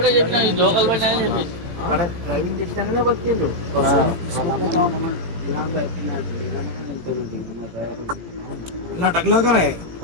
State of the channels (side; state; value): left; late; 17 ms